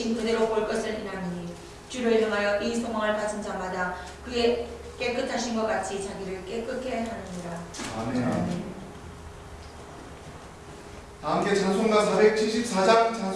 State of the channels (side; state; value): both; identical; correlation 1.00